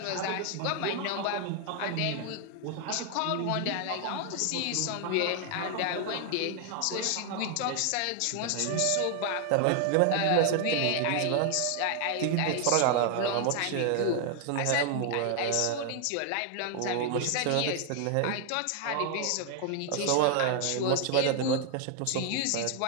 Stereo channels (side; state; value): both; different; correlation 0.00